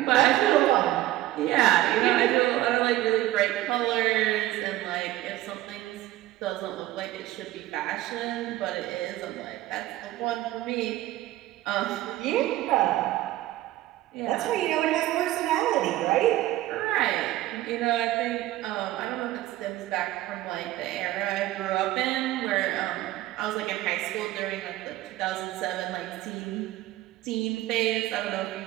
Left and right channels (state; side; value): quieter; left; 15.6 dB